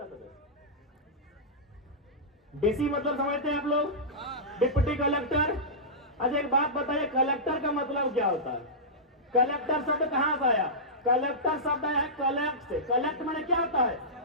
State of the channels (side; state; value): both; normal; correlation -0.16